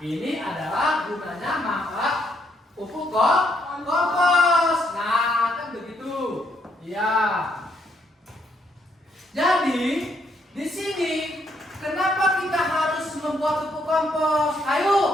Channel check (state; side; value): normal; both; correlation 0.73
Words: Ini adalah gunanya manfaat pupuk kompos. Nah, kan begitu. Ya. Jadi, di sini kenapa kita harus membuat pupuk kompos?